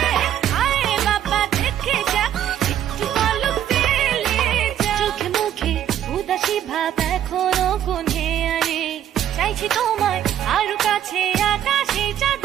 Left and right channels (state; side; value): quieter; left; 10.7 dB